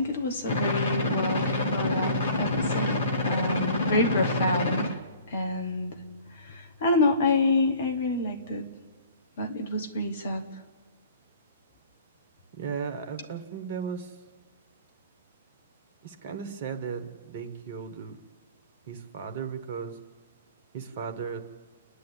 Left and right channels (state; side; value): inverted; both; correlation -0.49